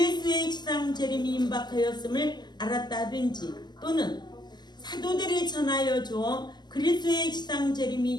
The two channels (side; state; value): right; late; 0.21 ms